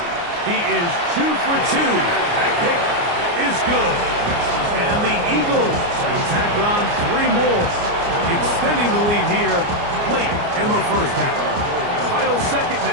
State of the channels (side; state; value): left; late; 29 ms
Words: He is 2 for 2. That kick is good. And the Eagles can tack on 3 more, extending the lead here late in the first half. Final 2nd